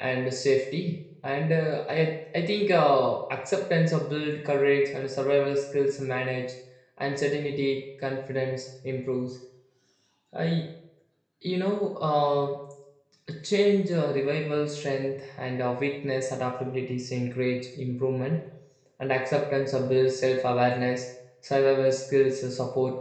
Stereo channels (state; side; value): identical; both; correlation 1.00